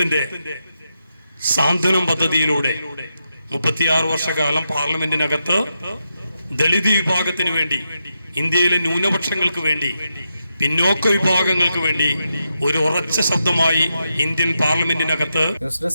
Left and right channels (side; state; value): both; inverted; correlation -0.85